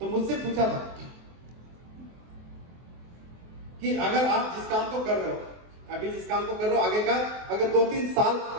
मुझसे पूछा था कि अगर आप जिस काम को कर रहे हो, अभी जिस काम को कर रहे हो, आगे का अगर 2-3 साल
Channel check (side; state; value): left; late; 24 ms